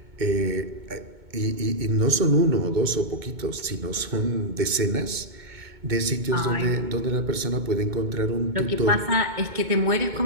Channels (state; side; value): late; left; 2.2 ms